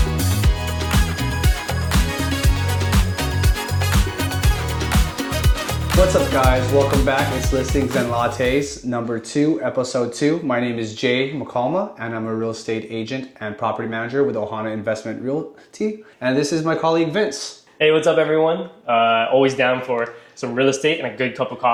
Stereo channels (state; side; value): identical; both; correlation 1.00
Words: What's up guys, welcome back. It's Listings and Lattes number 2, episode 2. My name is Jay McCalma and I'm a real estate agent and property manager with Oahu Investment Realty. And this is my colleague Vince. Hey, what's up everyone? Always down for some real estate and a good cup of